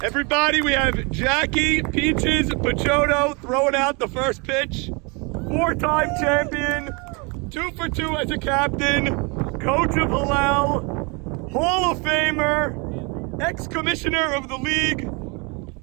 Everybody, we have Jackie Peaches Pachotto throwing out the first pitch. 4-time champion, 2 for 2 as a captain, coach of Hillel, Hall of Famer, ex-commissioner of the league.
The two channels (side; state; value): left; quieter; 30.8 dB